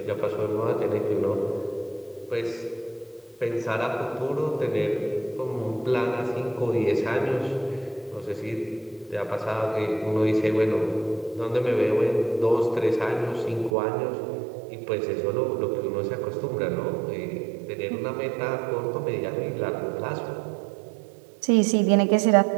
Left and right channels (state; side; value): drops out; left; at 13.8 s